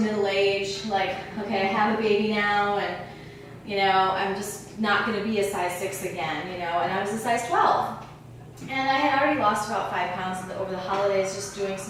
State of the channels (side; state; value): both; identical; correlation 1.00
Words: age? Like, okay, I have a baby now, and I'm just not going to be a size 6 again, and I was a size 12. And I had already lost about 5 pounds over the holidays just doing